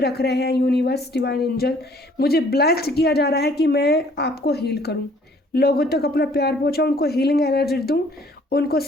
रहे हैं। यूनिवर्स, डिवाइन एंजल, मुझे ब्लेस्ड किया जा रहा है कि मैं आपको हील करूं, लोगों तक अपना प्यार पहुंचाऊं, उनको हीलिंग एनर्जी दूं, उनको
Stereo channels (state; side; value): normal; both; correlation 0.58